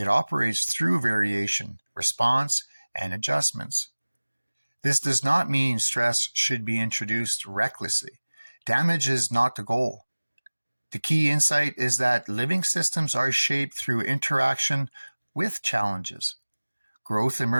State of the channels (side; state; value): both; inverted; correlation -1.00